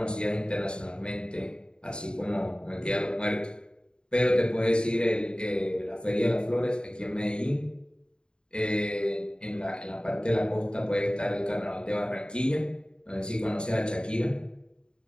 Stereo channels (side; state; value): right; late; 0.050 ms